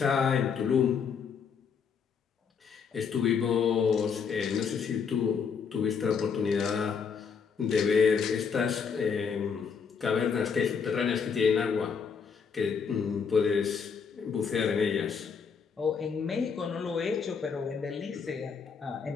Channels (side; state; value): right; quieter; 6.2 dB